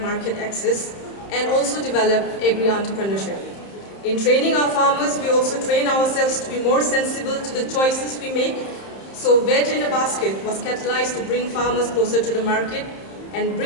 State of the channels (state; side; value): late; right; 31 ms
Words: market access, and also develop agri-entrepreneurship. In training our farmers, we also train ourselves to be more sensible to the choices we make. So Veg in a Basket was catalyzed to bring farmers closer to the market and